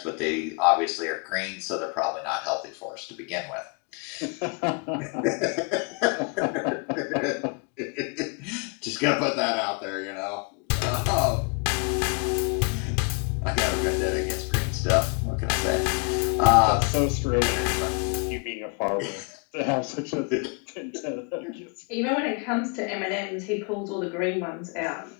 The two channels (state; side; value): quieter; right; 34.9 dB